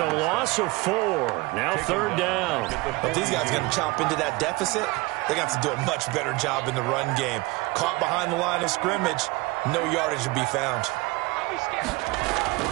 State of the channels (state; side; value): quieter; left; 23.5 dB